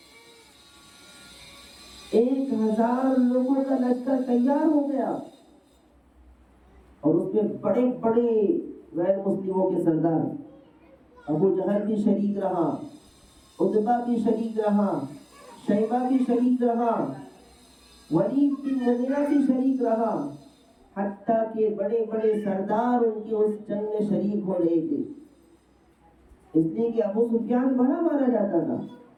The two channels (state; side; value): identical; both; correlation 1.00